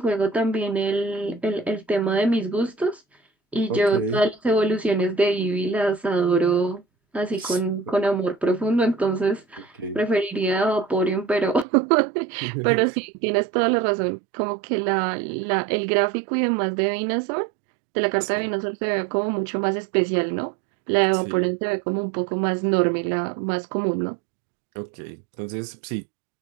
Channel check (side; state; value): left; drops out; at 11.7 s